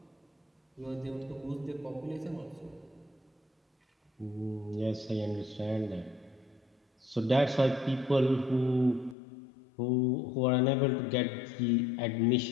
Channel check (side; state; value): right; drops out; at 9.2 s